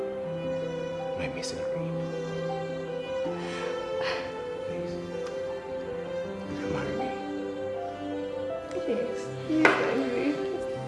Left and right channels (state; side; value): identical; both; correlation 1.00